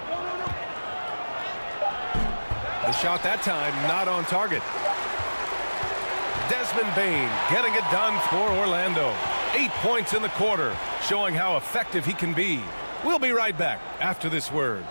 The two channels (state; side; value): inverted; both; correlation -1.00